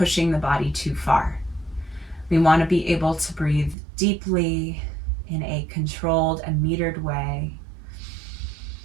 the body too far. We want to be able to breathe deeply in a controlled and metered way.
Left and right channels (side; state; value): left; drops out; at 3.8 s